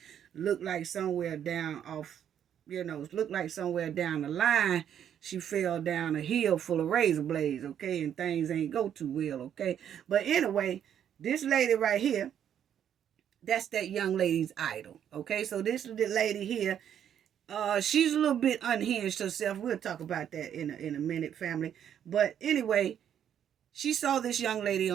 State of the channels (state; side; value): quieter; left; 9.4 dB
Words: looked like somewhere down off, looked like somewhere down the line, she fell down a hill full of razor blades, okay, and things ain't go too well, okay. But anyway, this lady right here, that's that young lady's idol, okay. So this lady here, she's a little bit unhinged herself. We'll talk about that in a minute, family. But anyway, she saw this young lady